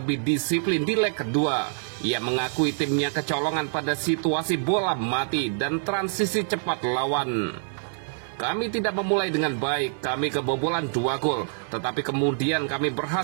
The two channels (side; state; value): left; silent; digital silence